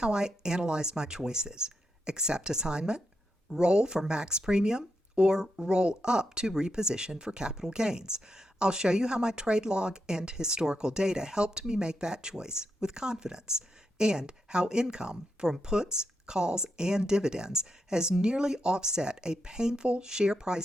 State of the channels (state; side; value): normal; both; correlation 0.84